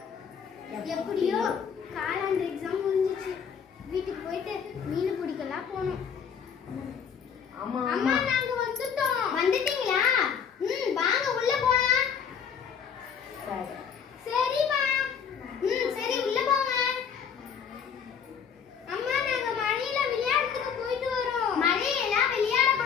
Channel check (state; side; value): quieter; right; 7.2 dB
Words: எப்படியோ காலாண்டு எக்ஸாம் முடிஞ்சிச்சு. வீட்டுக்கு போயிட்டு மீன் பிடிக்கலாம் போனோம். அம்மா அம்மா நாங்க வந்துட்டோம். வந்துட்டீங்களா? வாங்க உள்ள போலாம். சரிமா. சரி உள்ள போங்க. அம்மா நாங்க மழையில விளையாடுறதுக்கு போயிட்டு வரோம். மழையில விளையாட